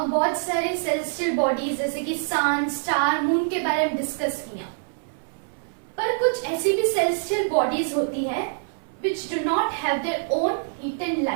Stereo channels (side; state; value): left; silent; 62 dB below the other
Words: सारे सेलेस्टियल बॉडीज जैसे कि सन, स्टार, मून के बारे में डिस्कस किया, पर कुछ ऐसी भी सेलेस्टियल बॉडीज होती है which do not have their own heat and